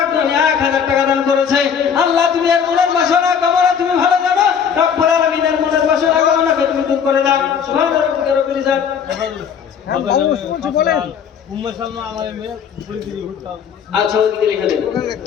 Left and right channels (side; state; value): right; quieter; 7.4 dB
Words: 1000 টাকা দান করেছে। আল্লাহ তুমি এর মনের বাসনা কামনা তুমি ভালো জানো, রব্বুল আলামিনের মনের বাসনা কামনাকে তুমি দূর করে দাও। সুবহান রাব্বিকা রাব্বিল ইজ্জাতি। আচ্ছা ওদিকে লিখে দেন।